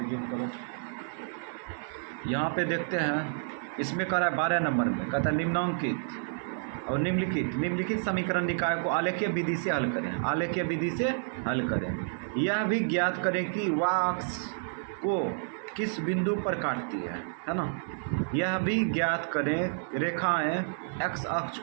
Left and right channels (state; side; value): silent; left; digital silence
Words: जूम करो, यहाँ पे देखते हैं इसमें कह रहा है 12 नंबर में कहता है निम्नांकित और निम्नलिखित समीकरण निकाय को आलेखीय विधि से हल करें। आलेखीय विधि से हल करें। यह भी ज्ञात करें कि वाह अक्ष को किस बिंदु पर काटती है ना। यह भी ज्ञात करें रेखाएं एक्स अक्ष